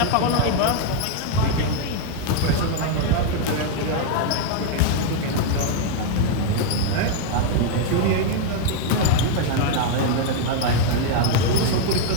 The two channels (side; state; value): both; different; correlation 0.00